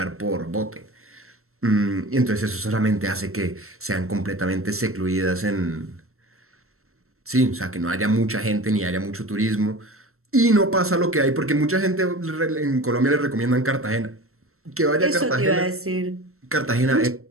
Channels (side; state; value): left; late; 0.63 ms